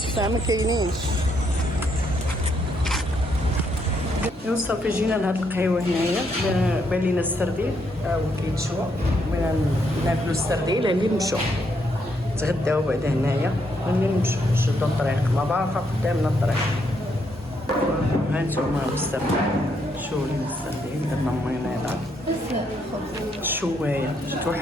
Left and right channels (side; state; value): both; normal; correlation 0.75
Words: ما كاينينش. ايوا صافي جينا لهاد القهيوه هنايا بان لينا السردين ها هو كيتشوى. بغينا ناكلو السردين اللي نمشيو تغداو بعدا هنايا ملي نمشيو نشدو الطريق مبارقه قدامنا الطريق. ها نتوما السردين شوفوا لينا السردين درنا مينيضه الشوايه